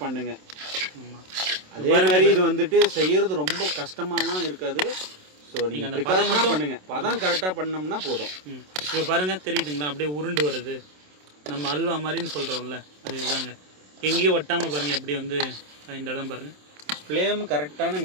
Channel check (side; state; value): left; late; 27 ms